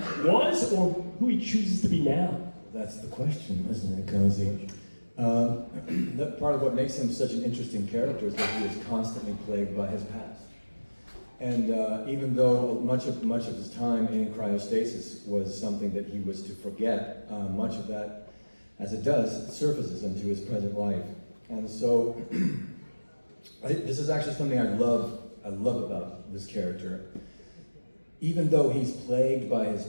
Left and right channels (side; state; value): both; inverted; correlation -1.00